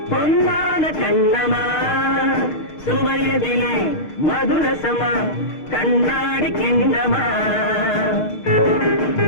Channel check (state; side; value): late; right; 6.6 ms